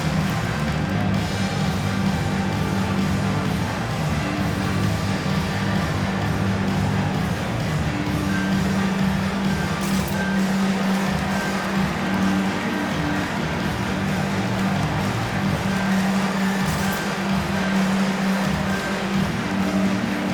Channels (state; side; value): identical; both; correlation 1.00